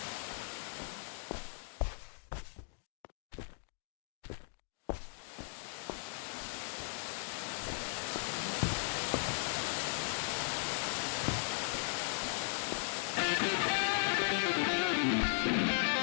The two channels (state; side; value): silent; right; digital silence